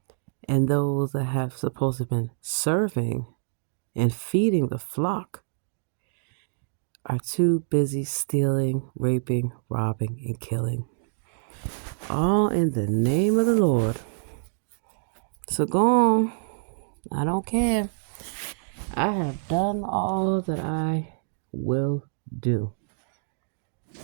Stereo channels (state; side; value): silent; left; digital silence